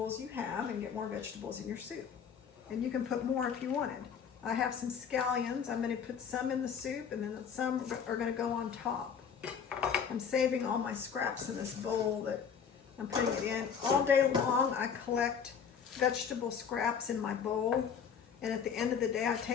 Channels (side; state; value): right; quieter; 7.1 dB